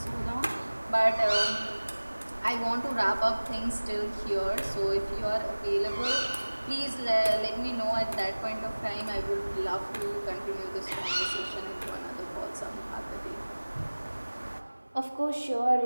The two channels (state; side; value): inverted; both; correlation -1.00